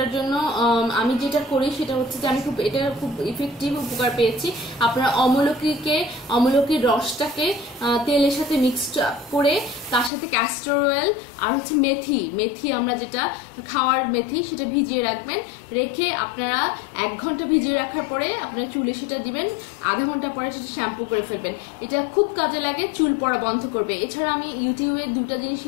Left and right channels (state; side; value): drops out; right; at 10.1 s